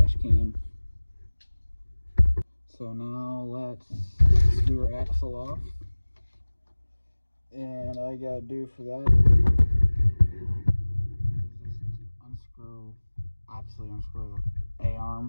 can. So now let's screw our axle off. And all I gotta do for that is just unscrew, obviously unscrew the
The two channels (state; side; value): inverted; both; correlation -1.00